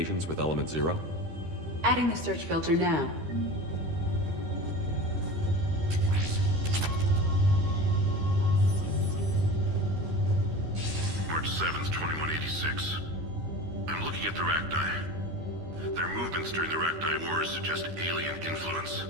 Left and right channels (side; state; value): left; late; 13 ms